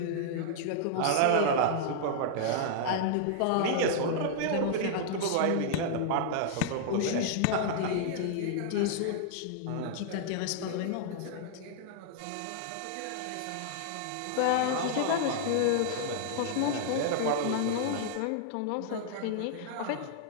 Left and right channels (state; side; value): different; both; correlation -0.01